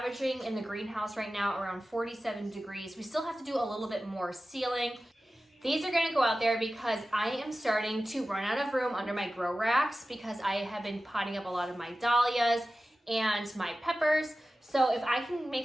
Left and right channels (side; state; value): both; normal; correlation 0.95